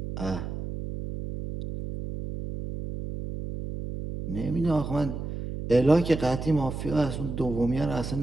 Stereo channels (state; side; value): noise; right; hum, 6 dB below the sound